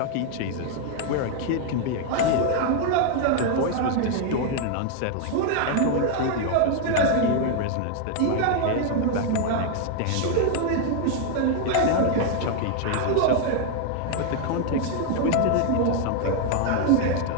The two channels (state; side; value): different; both; correlation 0.00